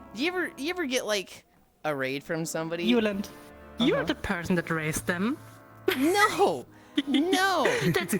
You ever get like a raid from somebody? Yulind, you're the person that raised them. No! No! That's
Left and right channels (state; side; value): identical; both; correlation 1.00